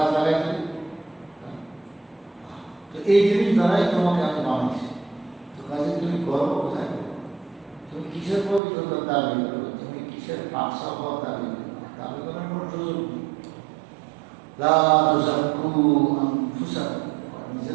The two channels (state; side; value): drops out; left; at 8.6 s